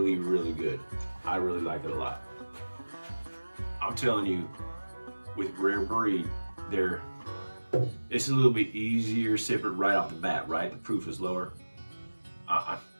really good. I really like it a lot. I'm telling you, with Rare Breed, it's a little bit easier sipping right off the bat, right? The proof is lower.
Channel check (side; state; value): both; inverted; correlation -1.00